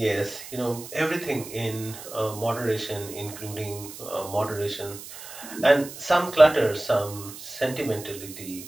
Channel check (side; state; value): right; noise; hiss, 13 dB below the sound